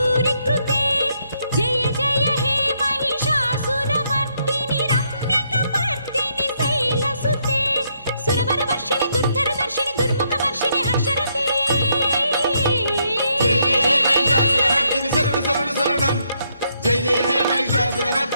कृते जय जय हे महिषासुरमर्दिनि रम्यकपर्दिनि शैलसुते सुरवरवर्षिणि दुर्धरदर्शिनि दुर्मुखवर्षिणि हर्षरते जय जय हे महिषासुरमर्दिनि शरण शरण शरणं जय जय हे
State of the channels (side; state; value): both; inverted; correlation -0.75